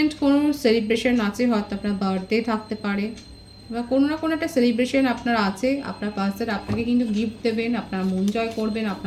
কোনো সেলিব্রেশন আছে, হয়তো আপনার বার্থডে থাকতে পারে, বা কোনো না কোনো একটা সেলিব্রেশন আপনার আছে, আপনার পার্সন আপনাকে কিন্তু গিফট দেবেন, আপনার মন জয় করবেন,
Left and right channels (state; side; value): identical; both; correlation 1.00